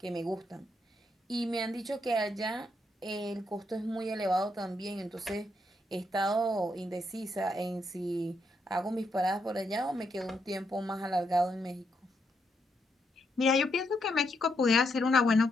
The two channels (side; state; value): both; normal; correlation 0.79